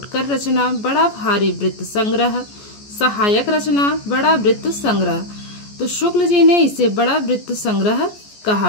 रचना, बड़ा भारी वृत्त संग्रह, सहायक रचना, बड़ा वृत्त संग्रह। तो शुक्ल जी ने इसे बड़ा वृत्त संग्रह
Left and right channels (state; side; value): late; right; 14 ms